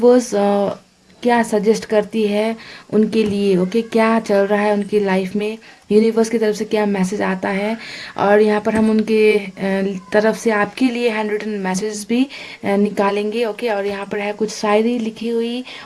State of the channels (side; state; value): both; identical; correlation 1.00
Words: क्या सजेस्ट करती है उनके लिए, ओके। क्या चल रहा है उनकी लाइफ में, यूनिवर्स की तरफ से क्या मैसेज आता है। और यहाँ पर हम उनके तरफ से आपके लिए हैंड रिटन मैसेज भी निकालेंगे, ओके। और यहाँ पर है कुछ शायरी लिखी हुई